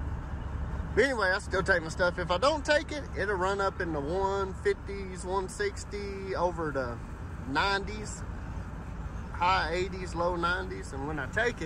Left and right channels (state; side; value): identical; both; correlation 1.00